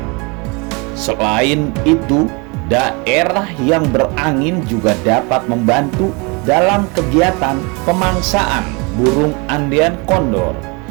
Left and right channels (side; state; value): left; quieter; 29.3 dB